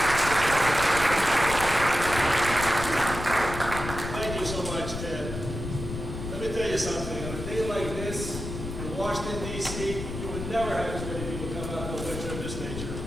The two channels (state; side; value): noise; left; rumble, 7 dB below the sound